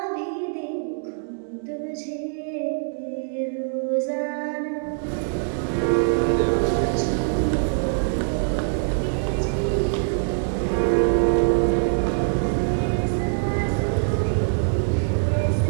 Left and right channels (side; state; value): left; silent; digital silence